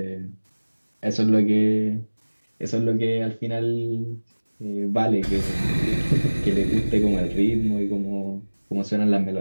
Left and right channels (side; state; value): both; inverted; correlation -1.00